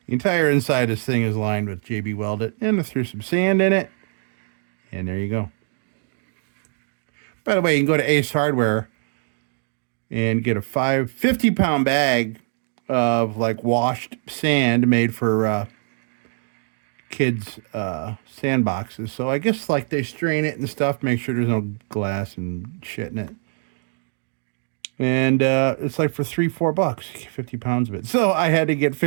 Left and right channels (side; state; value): left; silent; digital silence